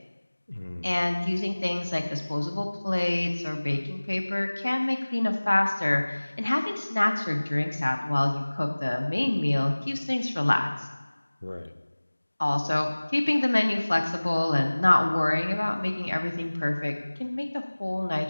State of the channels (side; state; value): both; inverted; correlation -1.00